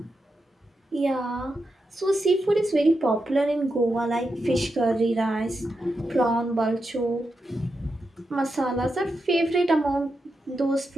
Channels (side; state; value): both; normal; correlation 0.87